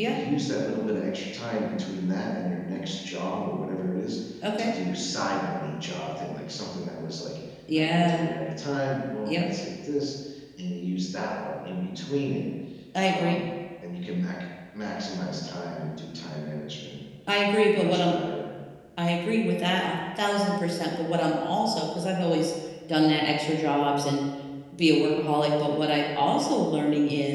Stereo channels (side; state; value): both; identical; correlation 1.00